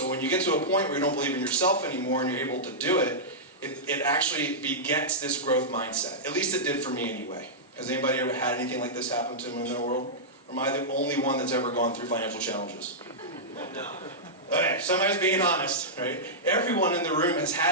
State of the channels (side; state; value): both; normal; correlation -0.11